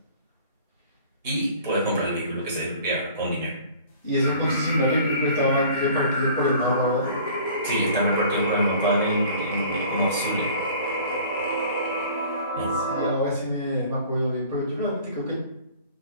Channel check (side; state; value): both; inverted; correlation -0.48